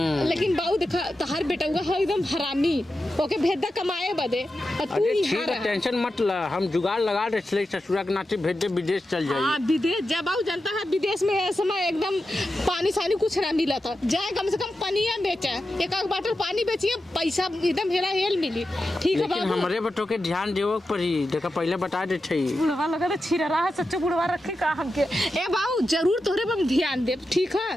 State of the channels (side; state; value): both; normal; correlation 0.90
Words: लेकिन बाबू देखा तोहार बेटा हुआ है एकदम हरामी ओके भेदा कमाए बदे और तू अरे ही ठीक है टेंशन मत ला हम जुगाड़ लगा दे ससुरा के नाते भेज दे विदेश चल जाइए। हाँ विदेश जब बाबू जनता है विदेश में है समय एकदम पानी सानी कुछ ना मिला था जाए कम से कम पनिया बेचा एक बाटल पानी बेचिए पैसा एकदम हेला हेल मिली ठीक है लेकिन बाबू। हमारे बटो के ध्यान देव पड़ी देखा पहले बता दे बुढ़वा लगा तो छिरा रहा है सच्चो बुढ़वा रखे का हमके ए बाबू जरूर तोहरे पर ध्यान दे ठीक है।